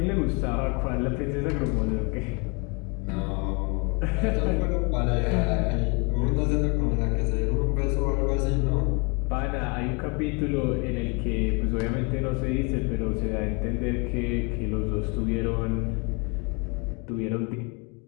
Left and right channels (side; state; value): right; quieter; 31.8 dB